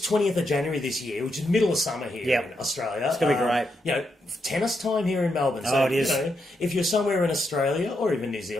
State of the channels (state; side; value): normal; both; correlation 0.82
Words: 20th of January this year, which is middle of summer here in Australia. It's going to be great. You know, tennis time here in Melbourne. So, it is. You know, if you're somewhere in Australia or even New